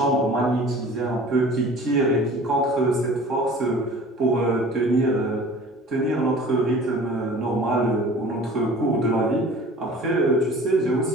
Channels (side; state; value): both; normal; correlation 0.44